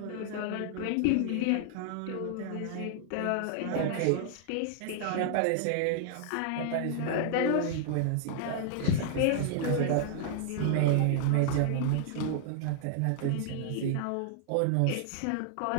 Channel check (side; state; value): both; different; correlation -0.01